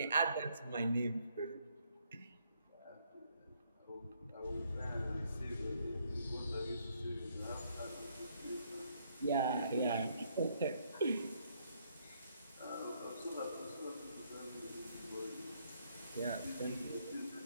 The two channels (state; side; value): inverted; both; correlation -0.71